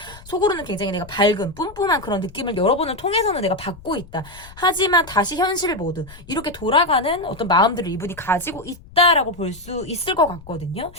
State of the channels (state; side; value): noise; left; rumble, 20 dB below the sound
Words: 속으로는 굉장히 내가 밝은 뿜뿜한 그런 느낌을 여러분을 통해서는 내가 받고 있다. 하지만 다시 현실 모드 이렇게 돌아가는 어떤 마음들을 이분이 가지고 있다라고 볼 수 있을 것 같거든요.